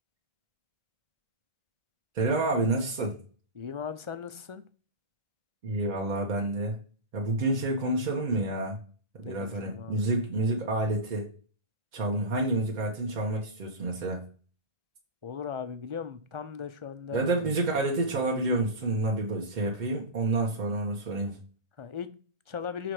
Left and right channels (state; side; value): late; left; 2.1 ms